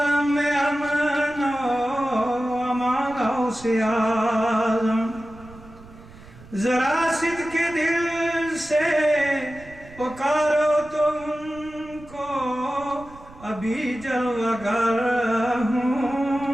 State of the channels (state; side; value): noise; right; rumble, 20 dB below the sound